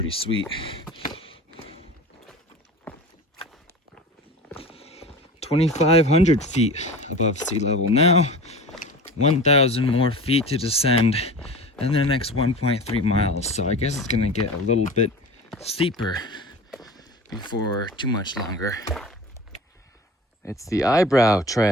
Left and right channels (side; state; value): both; normal; correlation 0.35